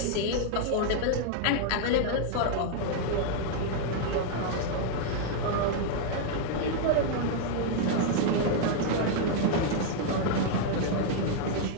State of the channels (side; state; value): both; different; correlation 0.00